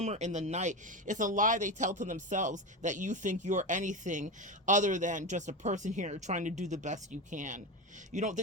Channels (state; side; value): normal; both; correlation 0.19